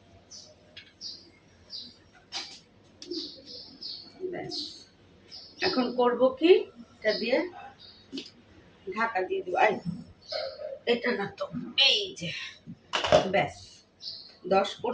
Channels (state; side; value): identical; both; correlation 1.00